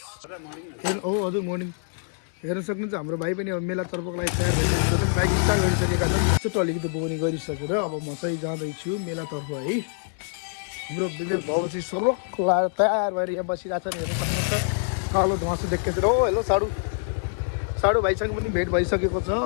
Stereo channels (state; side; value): silent; right; digital silence